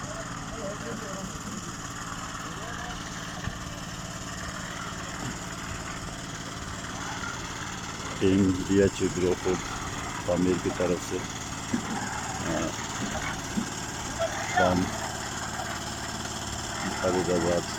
ٹیم بیروٹ تعمیر کی طرف سے کام مخیرحضرات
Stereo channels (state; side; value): identical; both; correlation 1.00